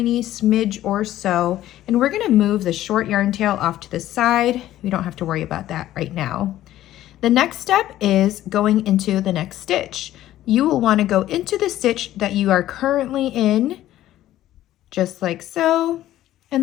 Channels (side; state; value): right; quieter; 13.7 dB